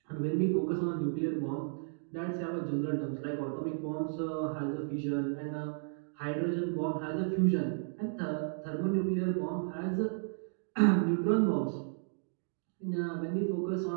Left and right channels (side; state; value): left; silent; digital silence